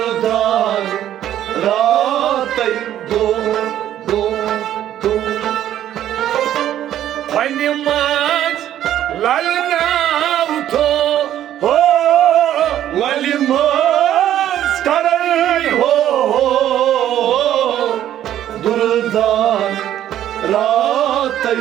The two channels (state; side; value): quieter; left; 11.7 dB